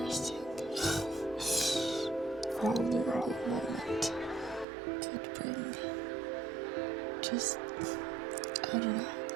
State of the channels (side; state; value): left; drops out; at 4.7 s